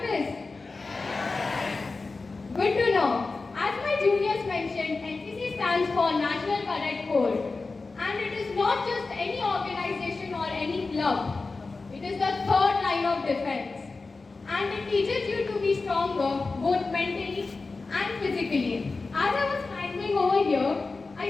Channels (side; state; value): right; quieter; 3.9 dB